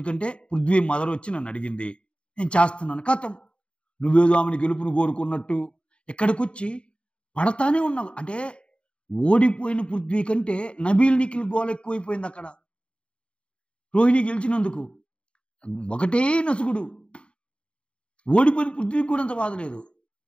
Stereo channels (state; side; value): late; right; 0.055 ms